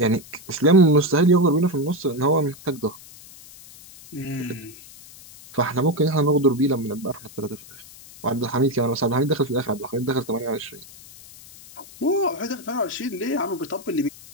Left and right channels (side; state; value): left; noise; hiss, 19 dB below the sound